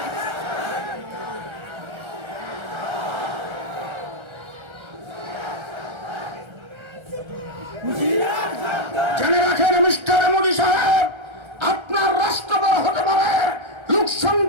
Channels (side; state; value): left; late; 1.3 ms